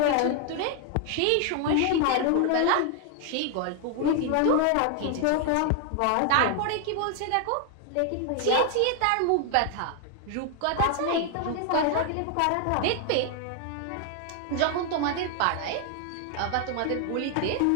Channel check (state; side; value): different; both; correlation 0.00